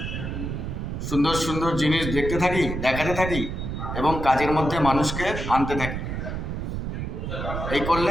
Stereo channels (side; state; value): right; noise; rumble, 4 dB below the sound